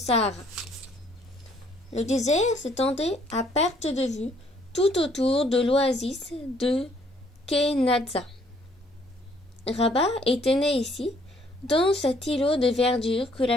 Le désert s'étendait à perte de vue tout autour de l'oasis de Kenazza. Rabat était né ici, dans cet îlot de verdure que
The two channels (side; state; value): both; normal; correlation 0.64